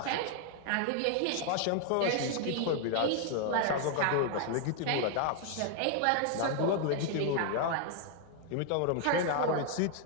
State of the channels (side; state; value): both; different; correlation 0.00